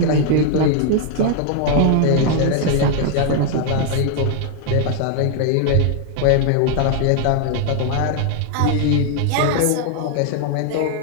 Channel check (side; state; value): both; different; correlation 0.00